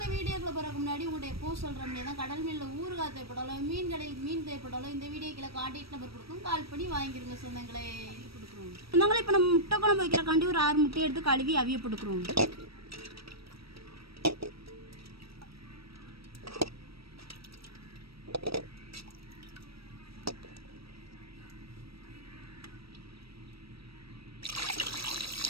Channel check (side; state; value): left; late; 0.76 ms